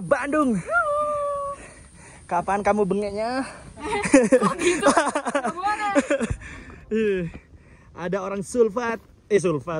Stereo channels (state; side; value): identical; both; correlation 1.00